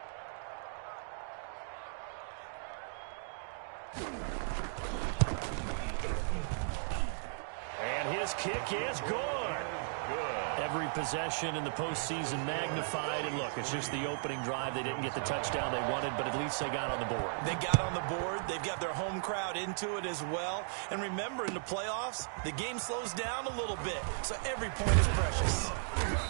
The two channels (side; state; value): left; silent; digital silence